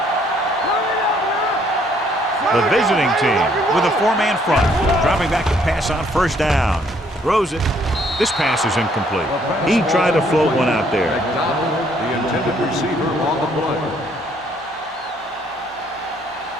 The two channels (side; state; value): both; normal; correlation 0.66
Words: The visiting team with a 4-man front. Dropping back to pass on first down. Throws it. This pass is incomplete. He tried to float one out there. McDonald, the intended receiver on the play.